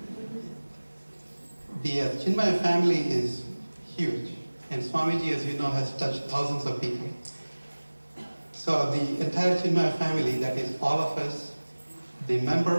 The Chinmaya family is huge, and Swamiji, as you know, has touched thousands of people. So the entire Chinmaya family, that is all of us, the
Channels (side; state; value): both; inverted; correlation -1.00